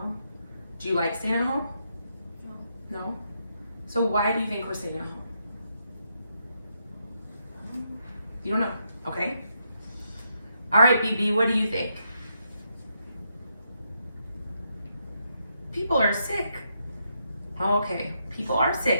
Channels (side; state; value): both; inverted; correlation -0.80